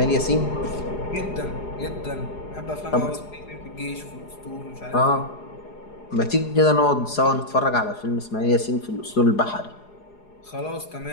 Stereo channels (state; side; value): late; right; 4.8 ms